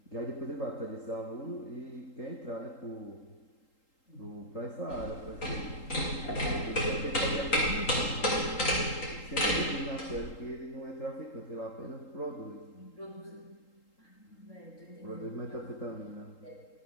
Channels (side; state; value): right; late; 3.8 ms